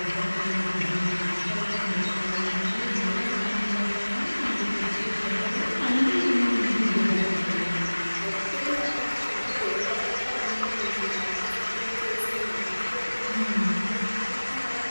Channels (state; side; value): inverted; both; correlation -1.00